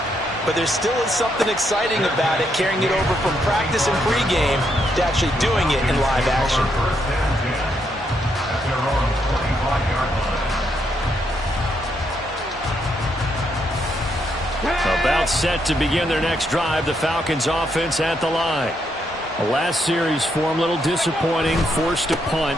But there still is something exciting about it, carrying it over from practice and pregame to actually doing it in live action. About set to begin their next drive, the Falcons offense at the line. The last series for them, a little disappointing, forced to punt.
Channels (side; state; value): both; normal; correlation 0.77